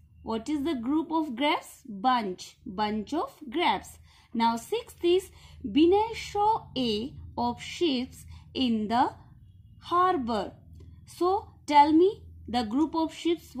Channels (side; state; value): both; identical; correlation 1.00